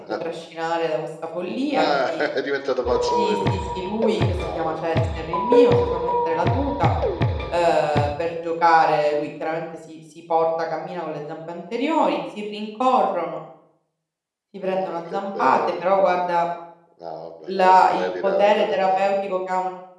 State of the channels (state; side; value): identical; both; correlation 1.00